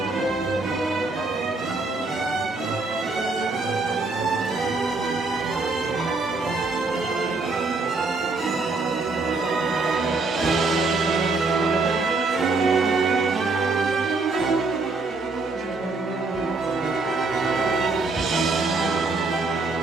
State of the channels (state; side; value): quieter; left; 3.7 dB